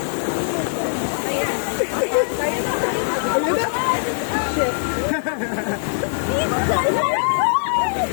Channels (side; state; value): right; silent; digital silence